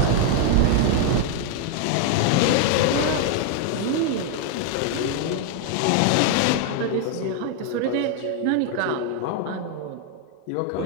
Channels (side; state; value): both; different; correlation 0.00